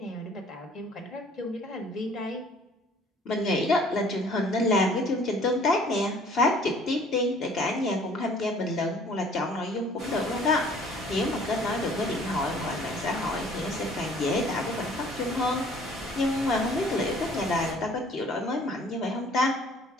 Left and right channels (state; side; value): normal; both; correlation 0.54